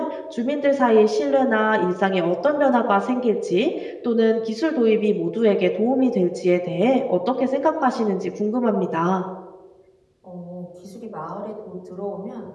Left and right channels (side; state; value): both; identical; correlation 1.00